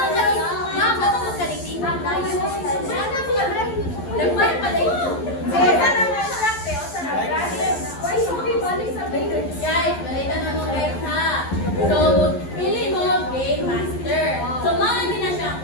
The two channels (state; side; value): late; right; 11 ms